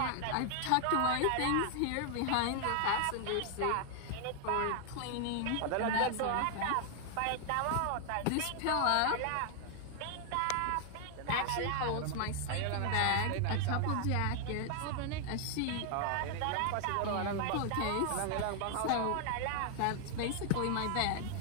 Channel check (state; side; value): different; both; correlation 0.00